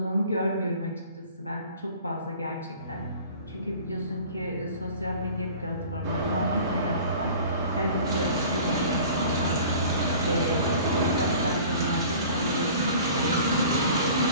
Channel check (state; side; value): inverted; both; correlation -0.45